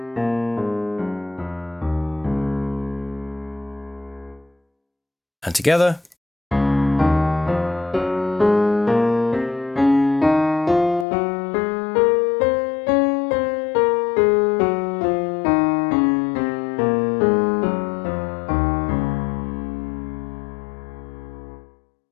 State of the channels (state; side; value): drops out; right; at 11.1 s